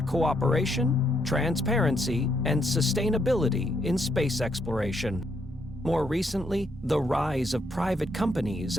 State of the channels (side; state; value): both; normal; correlation 0.75